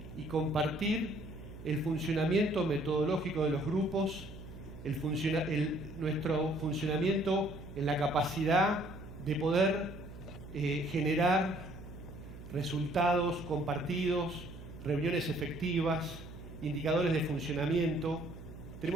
y compartir el funcionamiento metodológico de los grupos, nuestro funcionamiento en la capacidad de poder generar resultados compartidos, reuniones efectivas, indicadores de funcionamiento.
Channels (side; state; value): right; noise; hum, 14 dB below the sound